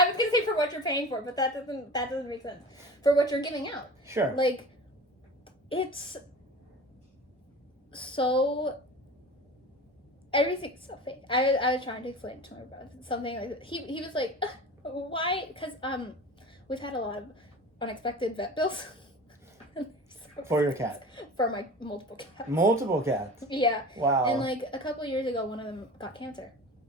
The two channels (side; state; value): both; normal; correlation 0.36